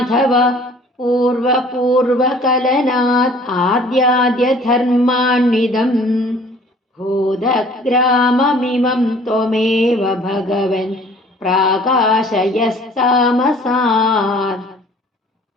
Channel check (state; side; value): normal; both; correlation 0.52